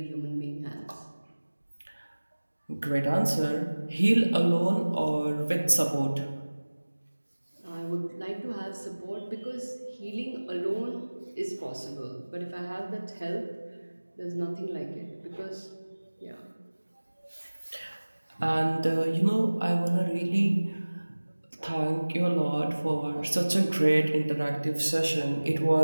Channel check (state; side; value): inverted; both; correlation -1.00